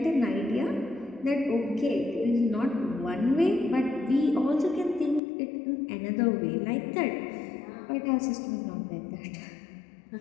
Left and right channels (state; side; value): drops out; right; at 5.2 s